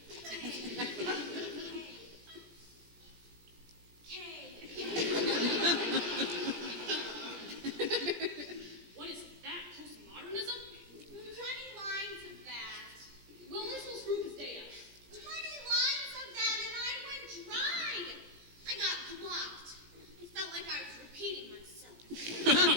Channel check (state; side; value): late; left; 18 ms